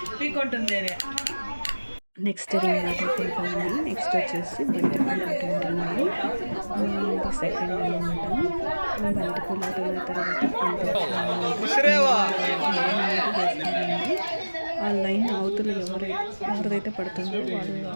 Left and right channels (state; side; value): inverted; both; correlation -1.00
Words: పీక్కుంటుంది అని. నెక్స్ట్ రింగ్ ఆట అయిపోయింది. నెక్స్ట్ వచ్చేసి బంతిపూల ఆట ఉంటున్నాయి. ఇది సెకండ్ అనమాట. బంతిపూల ఆట అయిన తర్వాత ఆ లైన్ అవతల ఎవరైతే పడుతుందో వాళ్ళు